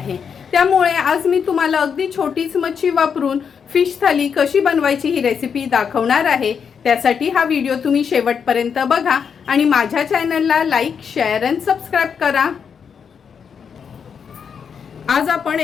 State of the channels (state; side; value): quieter; right; 6.8 dB